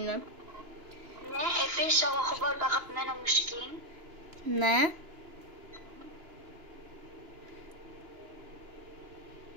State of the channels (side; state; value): left; late; 2.9 ms